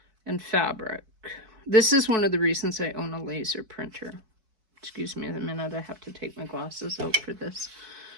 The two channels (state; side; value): late; left; 4.6 ms